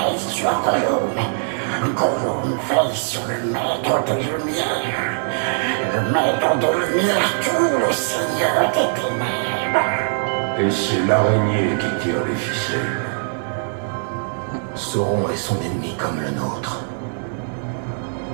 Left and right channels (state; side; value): silent; left; digital silence